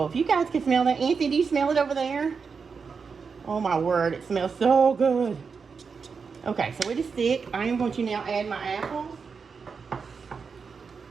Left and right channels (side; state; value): left; quieter; 5.5 dB